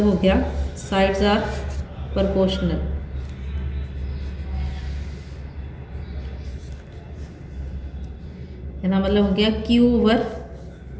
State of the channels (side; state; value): both; identical; correlation 1.00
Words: हो गया साइड्स आर प्रोपोर्शनल। इसका मतलब हो गया